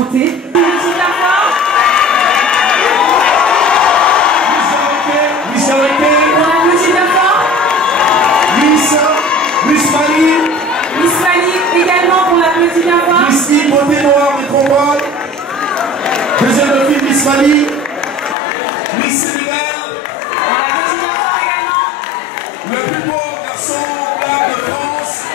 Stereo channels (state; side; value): drops out; right; at 18.4 s